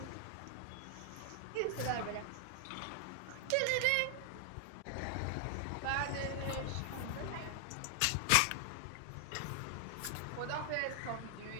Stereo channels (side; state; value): both; different; correlation 0.00